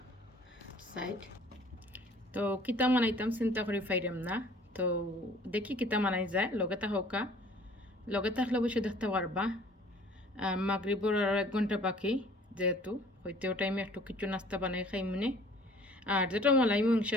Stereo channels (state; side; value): normal; both; correlation 0.53